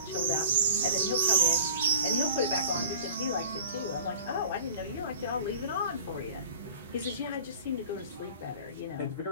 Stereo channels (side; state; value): both; inverted; correlation -0.43